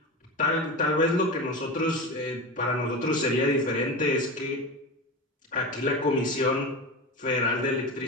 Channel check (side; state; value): both; normal; correlation 0.24